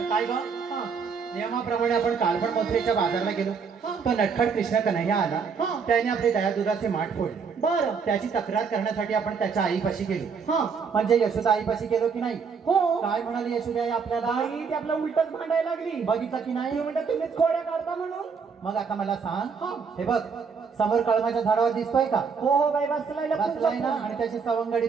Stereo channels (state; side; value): quieter; left; 5.8 dB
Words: काय ग हा. नियमाप्रमाणे आपण काल पण मथुरेच्या बाजाराला गेलो तो नटखट कृष्ण कन्हैया आला हा. त्याने आपले दयादुधाचे माठ फोडले बर त्याची तक्रार करण्यासाठी आपण त्याच्या आईपाशी गेलो हा म्हणजे यशोदा आईपाशी गेलो की नाही हो काय म्हणाली यशोदा आई आपल्याला आई ती आपलं उलटच भांडायला लागली बघितलं की ती नाही म्हणतात तुम्हीच खोड्या काढता म्हणून मग आता मला सांग हा. हे बघ समोर कळमाच्या झाडावर दिसतोय का हो हो बाई बसलाय बसलाय ना आणि त्याची सवंगडी